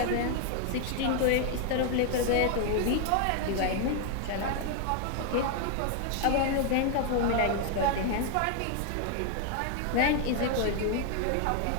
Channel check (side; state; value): both; different; correlation 0.00